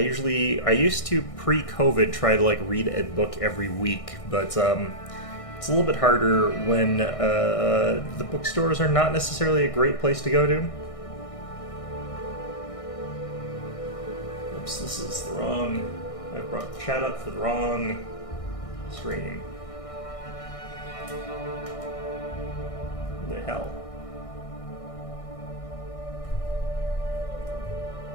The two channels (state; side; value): late; right; 1.6 ms